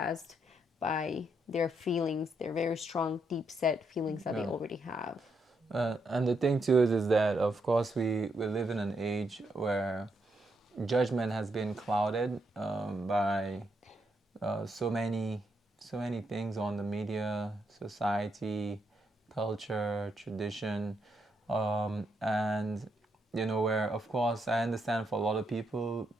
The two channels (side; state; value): both; normal; correlation 0.79